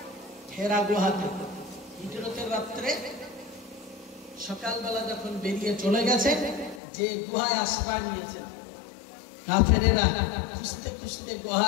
হেরা গুহাতে হিজরতের রাত্রে সকালবেলা যখন বেরিয়ে চলে গেছে, যে গুহায় আশ্রয় নিয়েছে, কাফেরেরা খুঁজতে খুঁজতে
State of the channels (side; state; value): right; drops out; at 6.8 s